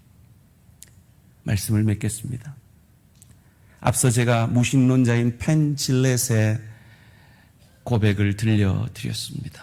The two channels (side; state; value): both; identical; correlation 1.00